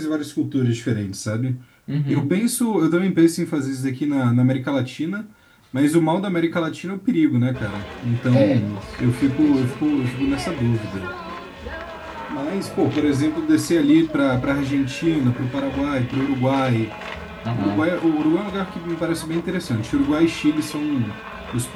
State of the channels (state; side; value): identical; both; correlation 1.00